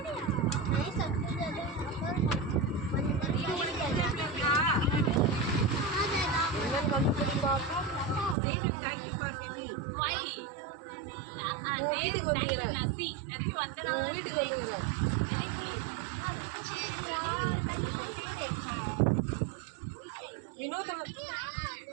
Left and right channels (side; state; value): left; drops out; at 8.3 s